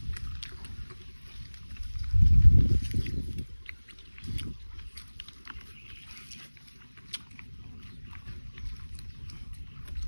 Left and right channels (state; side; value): inverted; both; correlation -1.00